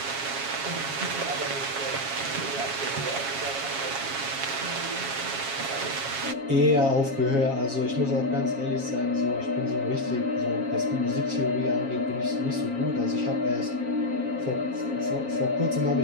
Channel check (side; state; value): left; late; 7.3 ms